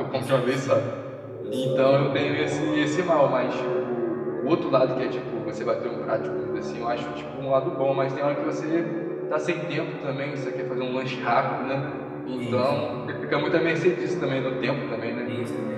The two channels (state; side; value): identical; both; correlation 1.00